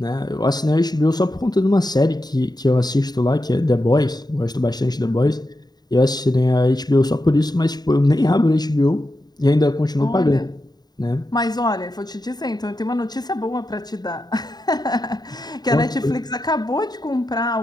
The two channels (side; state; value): right; late; 0.20 ms